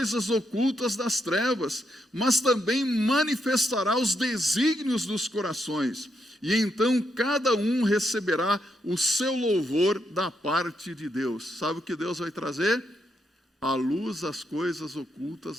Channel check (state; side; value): normal; both; correlation 0.80